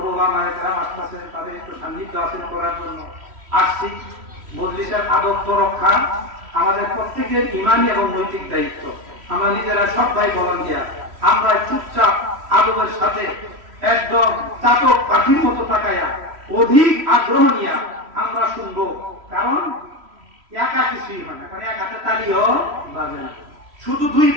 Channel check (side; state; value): left; late; 3.1 ms